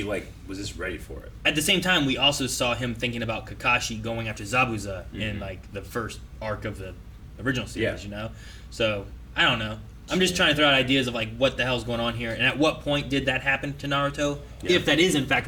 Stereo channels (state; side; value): identical; both; correlation 1.00